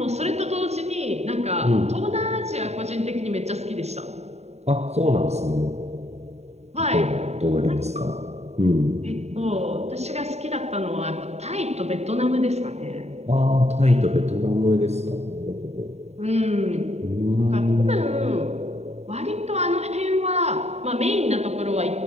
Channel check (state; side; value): late; left; 0.32 ms